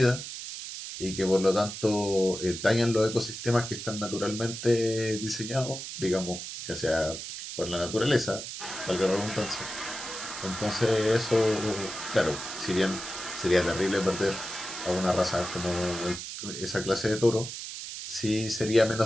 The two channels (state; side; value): noise; right; hiss, 8 dB below the sound